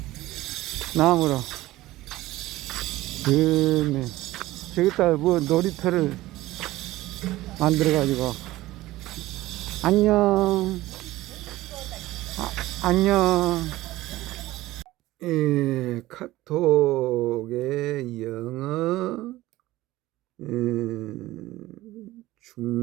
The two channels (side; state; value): left; quieter; 17.2 dB